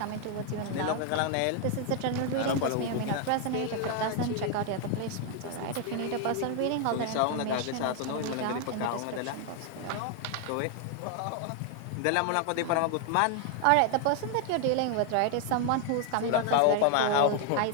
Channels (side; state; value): both; different; correlation 0.00